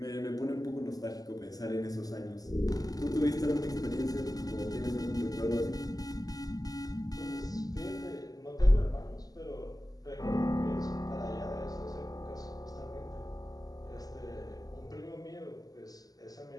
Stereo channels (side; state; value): right; late; 0.18 ms